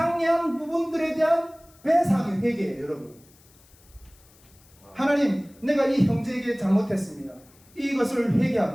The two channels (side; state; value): left; noise; hiss, 28 dB below the sound